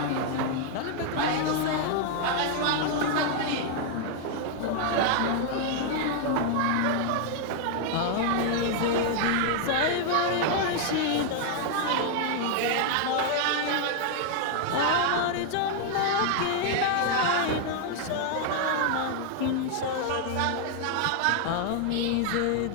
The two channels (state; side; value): different; both; correlation 0.00